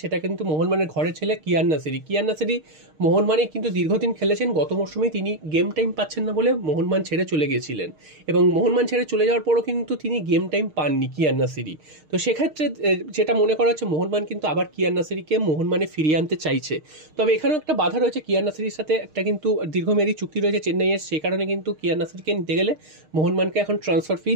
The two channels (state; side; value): late; left; 6.5 ms